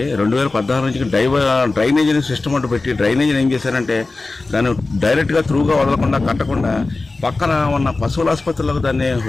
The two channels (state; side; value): quieter; right; 3.5 dB